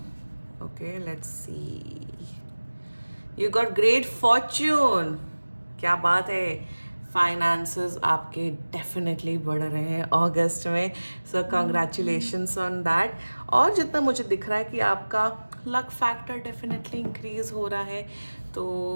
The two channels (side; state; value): both; inverted; correlation -1.00